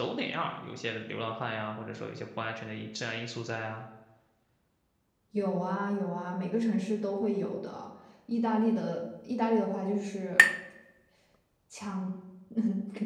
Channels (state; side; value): identical; both; correlation 1.00